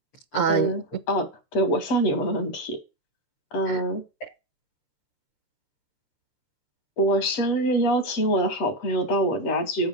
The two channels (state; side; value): late; right; 13 ms